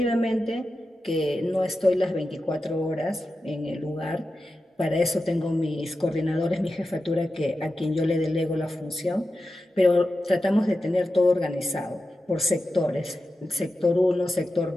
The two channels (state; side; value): normal; both; correlation 0.92